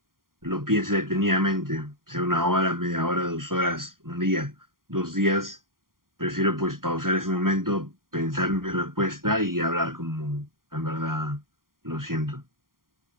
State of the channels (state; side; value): late; left; 0.91 ms